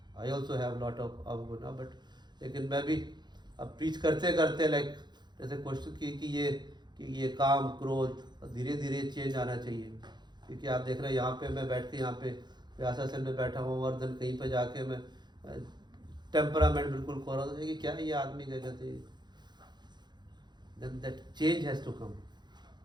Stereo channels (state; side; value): late; left; 0.21 ms